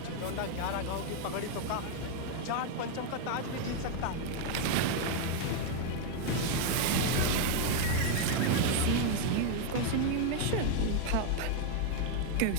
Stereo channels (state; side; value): different; both; correlation 0.01